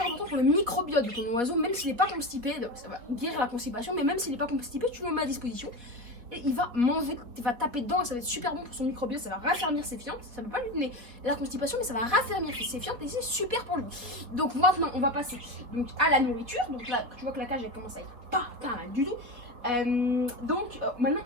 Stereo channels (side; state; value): left; late; 3.9 ms